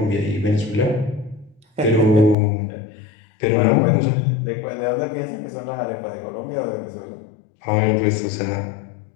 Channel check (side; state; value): right; drops out; at 2.4 s